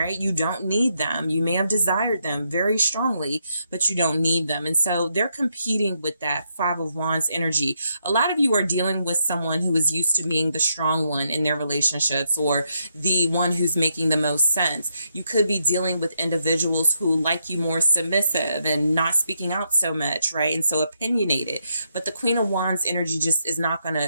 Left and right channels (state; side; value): inverted; both; correlation -0.79